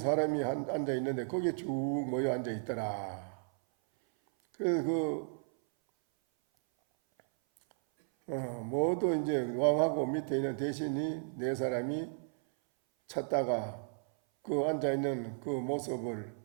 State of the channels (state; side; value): silent; left; 55 dB below the other